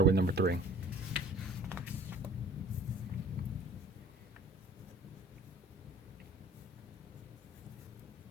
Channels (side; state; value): both; normal; correlation 0.49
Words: with number 3.